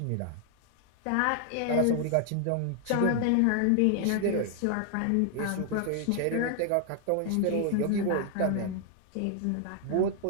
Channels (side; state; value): both; different; correlation 0.00